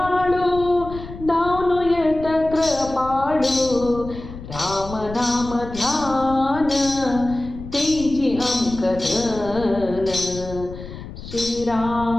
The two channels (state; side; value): noise; left; rumble, 12 dB below the sound